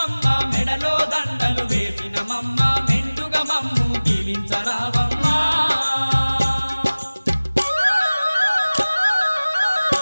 మెడలో దండలు వేసినమమ్మ మెండుగా మమ్ము దీవించరావమ్మా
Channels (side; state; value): both; inverted; correlation -0.99